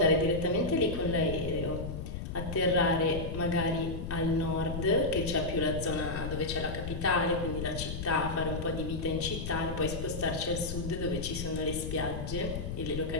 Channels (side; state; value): left; noise; rumble, 5 dB below the sound